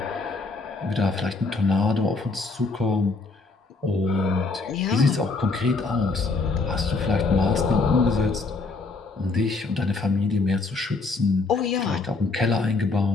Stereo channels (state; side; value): quieter; right; 3.8 dB